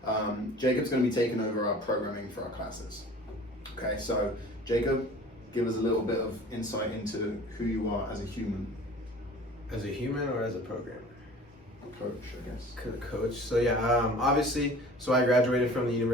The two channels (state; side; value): normal; both; correlation 0.44